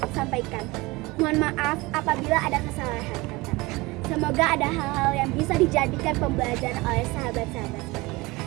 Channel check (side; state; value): left; quieter; 22.6 dB